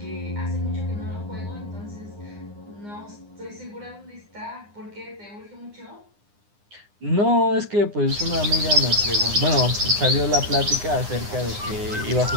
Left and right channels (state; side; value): late; left; 9.8 ms